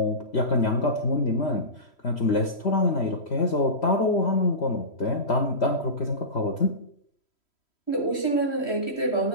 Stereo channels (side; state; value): right; late; 3.1 ms